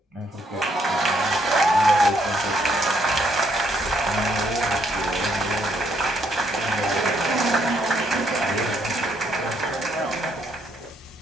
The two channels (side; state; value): both; normal; correlation 0.72